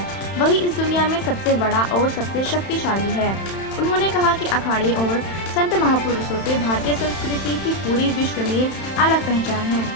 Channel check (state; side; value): late; right; 31 ms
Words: वही इस दुनिया में सबसे बड़ा और सबसे शक्तिशाली है। उन्होंने कहा कि अखाड़े और संत महापुरुषों से भारतीय संस्कृति की पूरी विश्व में अलग पहचान है।